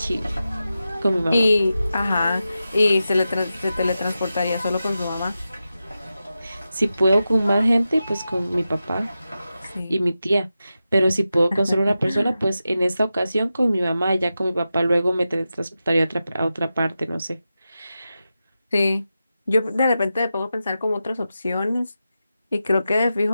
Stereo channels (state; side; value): inverted; both; correlation -0.91